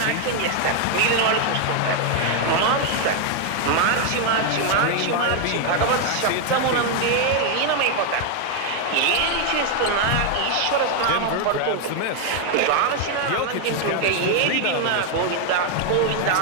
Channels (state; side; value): different; both; correlation 0.01